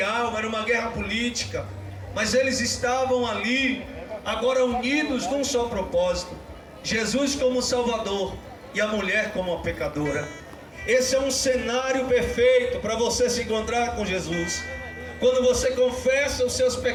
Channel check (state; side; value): identical; both; correlation 1.00